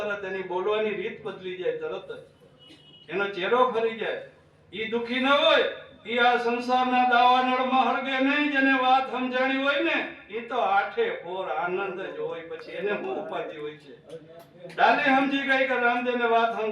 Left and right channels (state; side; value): identical; both; correlation 1.00